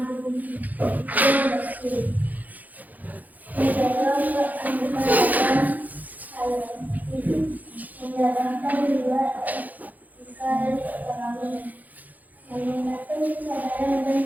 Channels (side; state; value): left; late; 0.081 ms